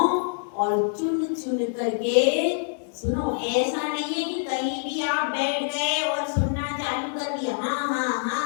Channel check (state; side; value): silent; right; digital silence